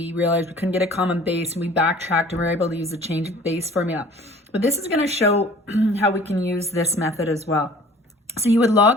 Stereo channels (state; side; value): normal; both; correlation 0.49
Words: realized we couldn't get a common base, and we backtracked and we were able to use the change of base formula. But this is going to show how we can use this method as well. So you would